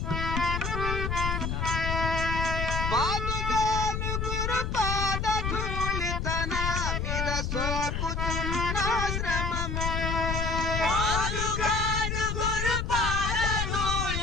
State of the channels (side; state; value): left; noise; rumble, 1 dB below the sound